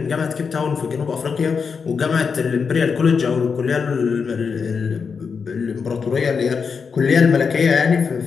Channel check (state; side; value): quieter; right; 5.7 dB